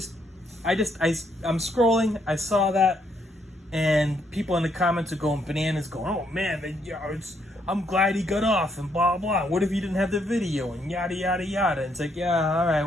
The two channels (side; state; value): both; normal; correlation 0.73